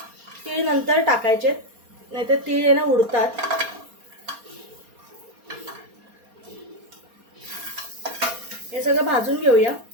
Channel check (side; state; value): left; late; 4.3 ms